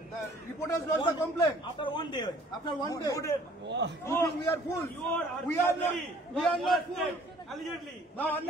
the reporters lodged the complaint. After 1 day. After 1 day. You think we are fools? We are not fools. Allegedly. Now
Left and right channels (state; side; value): normal; both; correlation 0.55